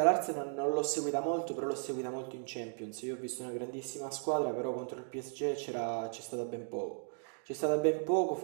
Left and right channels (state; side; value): silent; left; digital silence